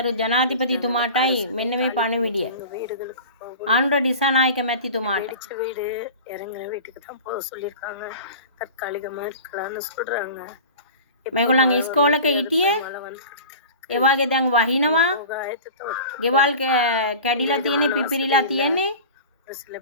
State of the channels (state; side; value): inverted; both; correlation -0.36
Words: ජනාධිපතිතුමාටයි මෙන්න මේ පණිවිඩය. எங்க வீடுகளுக்கு போகும். ආණ්ඩුව දිසානායක මැතිතුමාට. வெடிச்ச வீடு இறங்குற வீட்டுக்கு தான் போக சொல்லியிருக்காங்க. தற்காலிகமா இருக்கலாம்னு சொல்றாங்க. මේගොල්ලන් ඉස්කෝලක හිටියේ மழை வந்து ඒ වගේ දැන් වහිනවා. போக ஆயத்தத்தோட ගෙවල් කැඩිලා තියෙන්නේ පිපිරිලා තියෙන්නේ. ஒரு சில